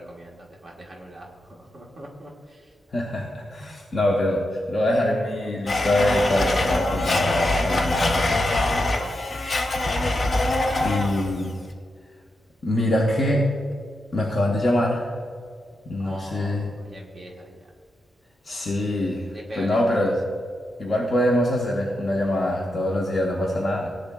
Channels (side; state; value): both; normal; correlation 0.86